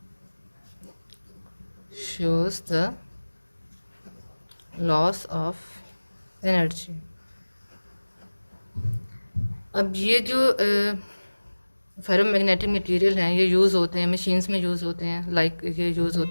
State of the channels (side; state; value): both; inverted; correlation -1.00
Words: shows the loss of energy. अब ये जो ferromagnetic material हैं, ये use होते हैं machines में, use होते हैं, लाइक ये यूज़